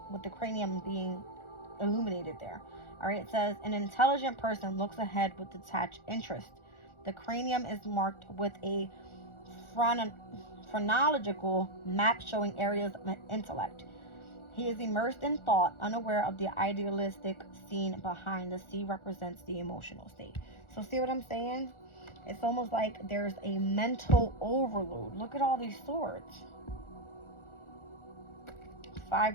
with the cranium being illuminated there. All right, it says an intelligent person looks ahead with detached interest. The cranium is marked with a phrenological map showing areas of intellect. He is immersed in thought, unaware of the idealistic scene behind. The sea represents the emotional state. So see what I'm saying? It's almost like there's a mental overload. Look at all these swords.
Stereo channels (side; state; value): right; late; 1.4 ms